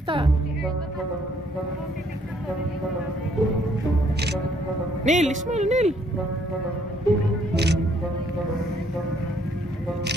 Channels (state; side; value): normal; both; correlation 0.66